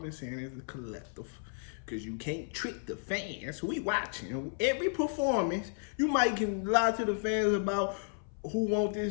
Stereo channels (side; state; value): right; silent; 56 dB below the other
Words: saying as a collective, because you can't trick the fans. We watching every performance. You might can lie to the fans about who want